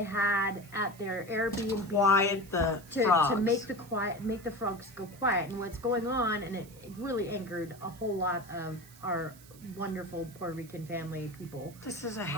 had at their Airbnb to make the frogs go quiet. And what's going on, and it really angered a whole lot of our wonderful Puerto Rican family people. This is a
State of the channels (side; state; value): right; noise; hiss, 22 dB below the sound